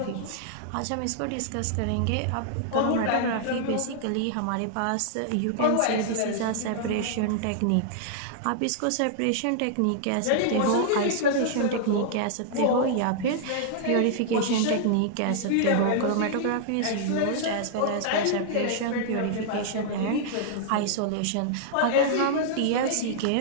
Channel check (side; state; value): both; different; correlation -0.01